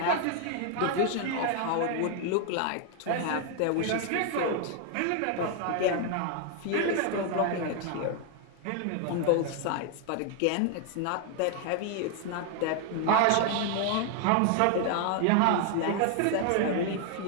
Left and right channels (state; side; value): different; both; correlation 0.01